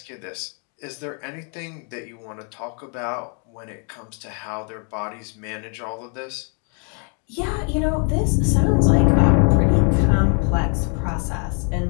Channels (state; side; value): quieter; right; 39.8 dB